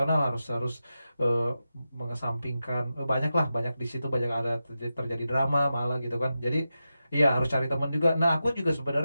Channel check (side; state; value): both; inverted; correlation -0.91